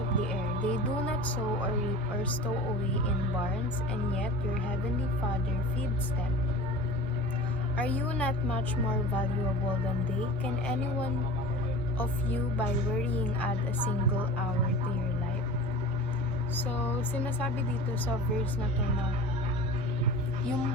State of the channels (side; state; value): both; normal; correlation 0.38